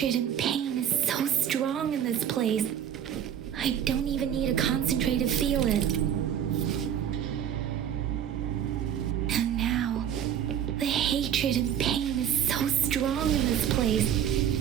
and pain is so strong in this place. I don't even need to concentrate to feel it. And now, the hatred and pain is so strong in this place.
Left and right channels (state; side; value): quieter; left; 9.5 dB